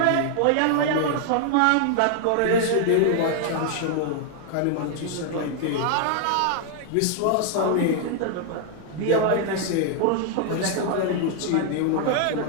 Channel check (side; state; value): both; different; correlation 0.00